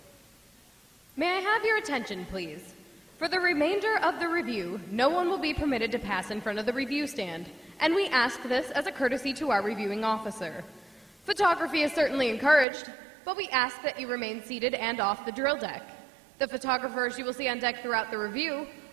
May I have your attention, please? For the remainder of the review, no one will be permitted to pass in front of the review stand, and we ask this as a courtesy to our reviewing officer. Photography is certainly encouraged, but we ask that you remain seated and off the drill deck. The photographers you will see on deck throughout the review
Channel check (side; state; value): left; drops out; at 12.7 s